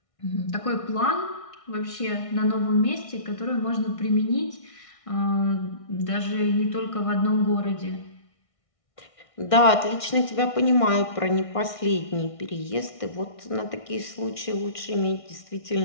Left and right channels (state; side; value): late; right; 1.6 ms